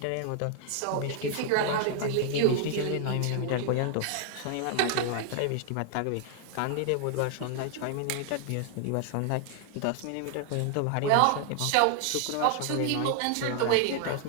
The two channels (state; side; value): different; both; correlation 0.00